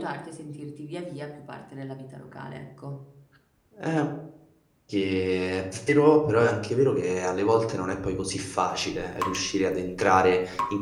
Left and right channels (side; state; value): both; identical; correlation 1.00